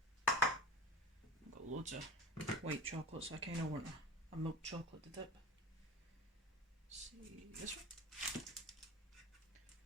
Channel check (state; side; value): normal; both; correlation 0.35